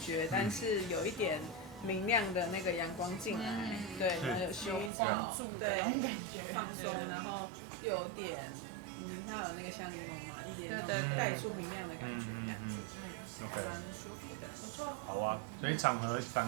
觉，但是有一点明亮的那个阳光进来，对，然后有薰衣草，对，有放松，然后又有点，它有那个香柠檬嘛，一点那种带出明亮的感觉，OK， 蛮舒服的，不错。好啊，所以场合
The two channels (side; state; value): left; drops out; at 4.9 s